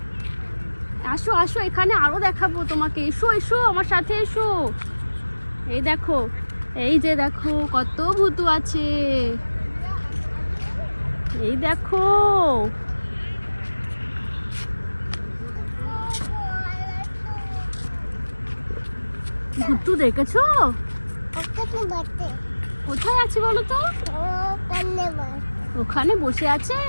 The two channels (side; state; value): both; inverted; correlation -1.00